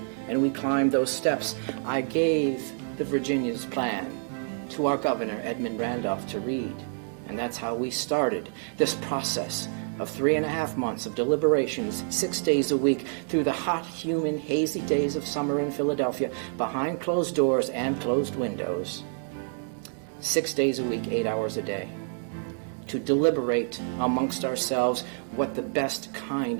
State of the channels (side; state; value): left; silent; 59 dB below the other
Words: and we climbed those steps, I gave the Virginia's plan to our governor, Edmund Randolph, to read. And that's how we started this process of 3.5 months of deliberations, 6 days a week, through the hot, humid, hazy days of summer in Philadelphia, behind closed doors and closed windows. 6 days a week, 8 hours a day, to deliberate amongst ourselves what the best kind